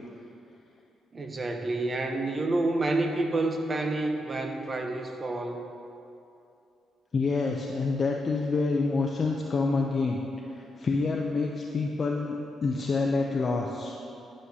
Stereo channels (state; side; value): normal; both; correlation 0.84